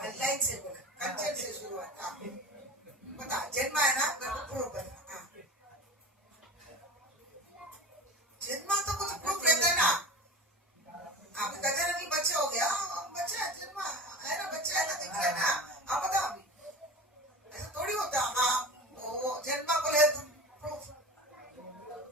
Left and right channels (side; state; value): both; normal; correlation 0.32